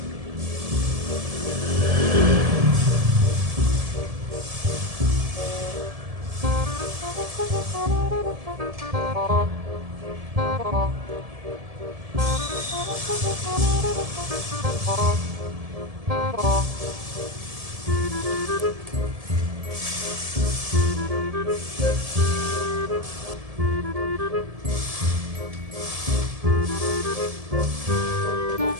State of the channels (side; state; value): left; late; 1.7 ms